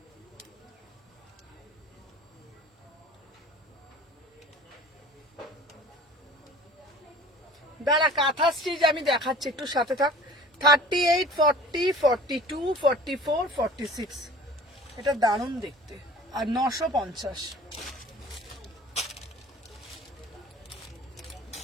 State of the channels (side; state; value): both; normal; correlation 0.45